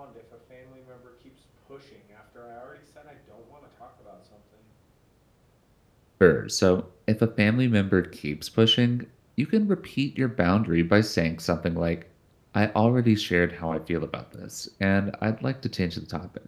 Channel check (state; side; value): identical; both; correlation 1.00